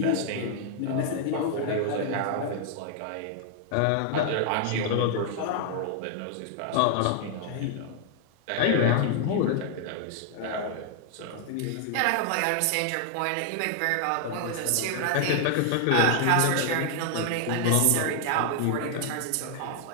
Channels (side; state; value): both; different; correlation 0.00